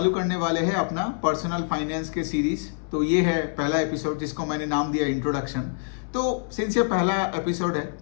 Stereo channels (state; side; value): silent; right; 61 dB below the other